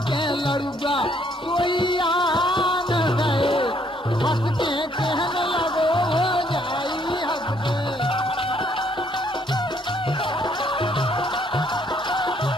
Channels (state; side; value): normal; both; correlation 0.67